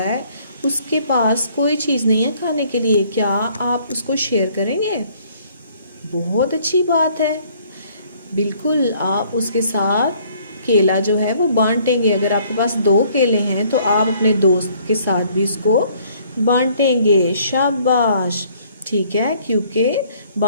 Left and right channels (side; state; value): both; inverted; correlation -0.61